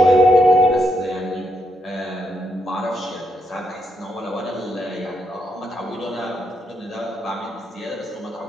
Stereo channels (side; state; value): both; normal; correlation 0.78